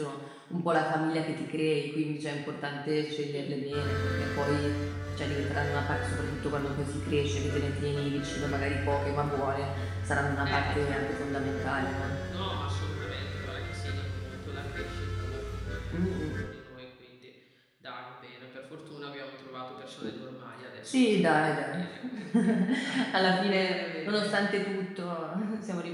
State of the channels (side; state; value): both; identical; correlation 1.00